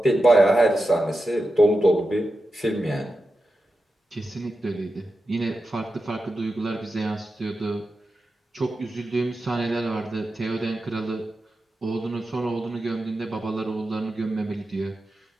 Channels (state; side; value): normal; both; correlation 0.91